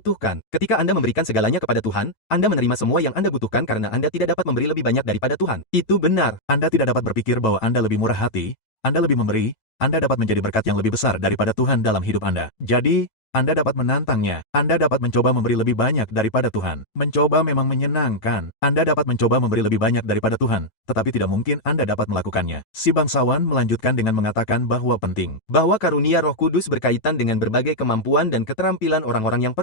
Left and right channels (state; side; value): late; right; 9.0 ms